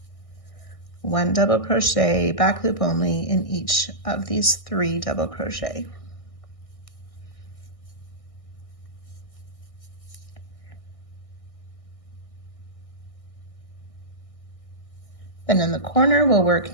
1 double crochet, back loop only in each of these 3 double crochet. Then in the corner, we'll work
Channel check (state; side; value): late; right; 1.6 ms